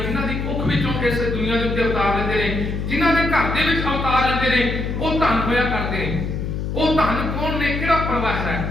ਦੀ ਕੁੱਖ ਵਿੱਚੋਂ ਇਸ ਦੁਨੀਆ ਦੇ ਉੱਤੇ ਅਵਤਾਰ ਲੈਂਦੇ ਨੇ, ਜਿਨ੍ਹਾਂ ਦੇ ਘਰ ਦੇ ਵਿੱਚ ਅਵਤਾਰ ਲੈਂਦੇ ਨੇ, ਉਹ ਧੰਨ ਹੋਇਆ ਕਰਦੇ ਨੇ। ਉਹ ਧੰਨ ਕੌਣ ਨੇ? ਕਿਹੜਾ ਪਰਿਵਾਰ ਹੈ?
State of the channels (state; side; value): noise; left; hum, 3 dB below the sound